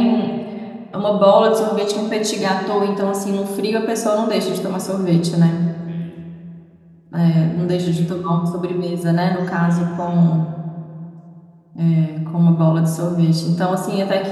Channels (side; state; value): both; identical; correlation 1.00